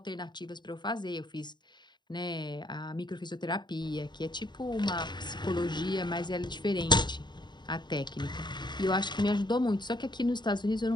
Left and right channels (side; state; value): right; late; 0.21 ms